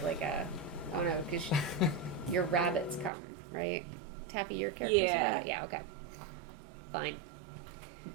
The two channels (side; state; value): left; drops out; at 3.1 s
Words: no, because your rabbits come, right? Taffy, your character. Yeah. Yeah. Okay. Fine.